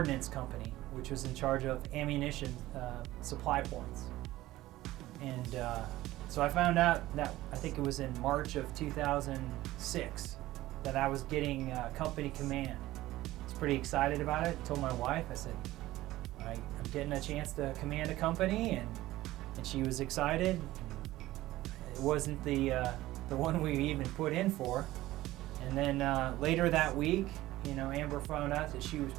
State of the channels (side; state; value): left; quieter; 16.5 dB